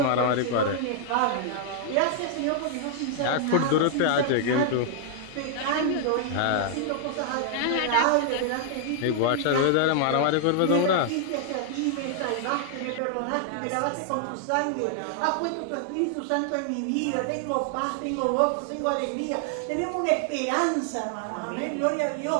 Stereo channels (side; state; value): both; different; correlation 0.00